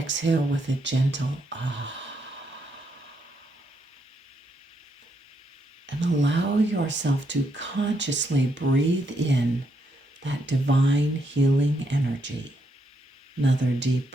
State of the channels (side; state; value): both; normal; correlation 0.77